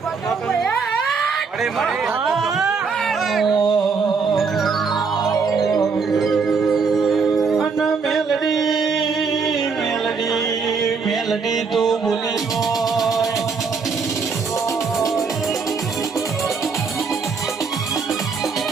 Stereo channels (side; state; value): left; quieter; 5.1 dB